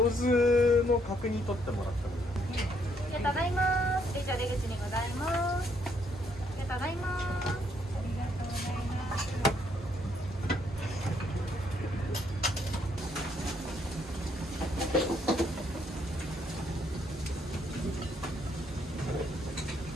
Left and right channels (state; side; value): normal; both; correlation 0.70